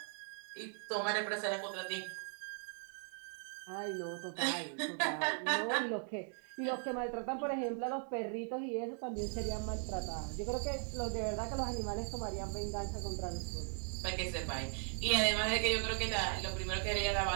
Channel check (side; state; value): left; silent; 52 dB below the other